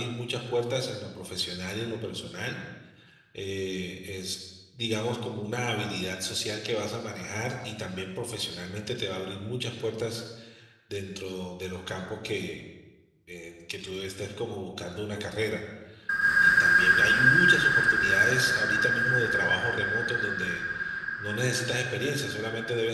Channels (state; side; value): identical; both; correlation 1.00